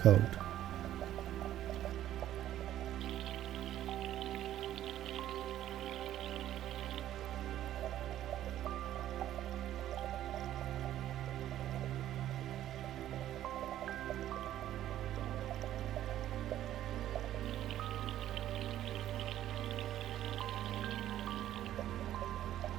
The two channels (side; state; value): left; quieter; 12.4 dB